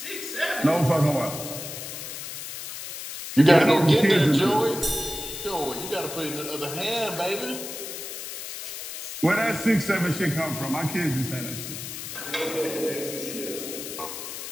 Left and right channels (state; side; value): noise; left; hiss, 8 dB below the sound